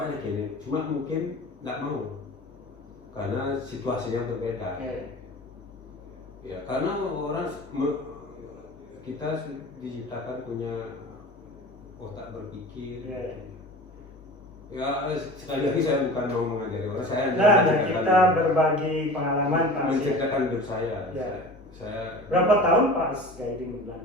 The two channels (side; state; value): both; normal; correlation 0.37